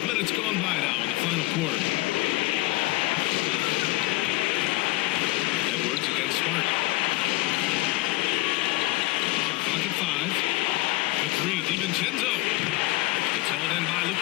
minutes gone by now in the final quarter. Edwards against Smart. Shot clock at 5. The 3, DiVincenzo. It's hauled in by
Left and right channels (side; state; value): right; quieter; 20.7 dB